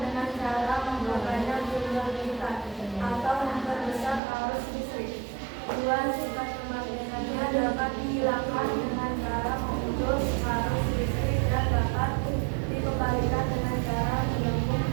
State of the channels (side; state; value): left; drops out; at 4.2 s